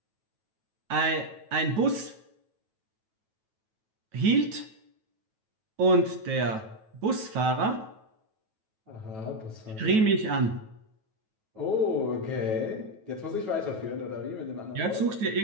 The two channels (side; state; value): left; late; 9.2 ms